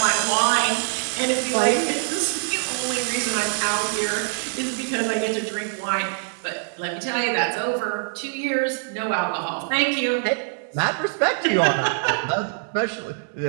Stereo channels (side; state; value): left; silent; digital silence